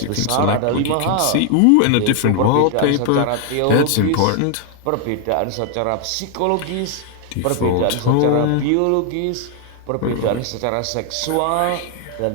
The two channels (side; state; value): both; different; correlation 0.00